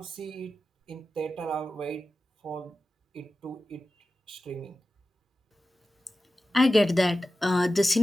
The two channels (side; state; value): both; normal; correlation 0.94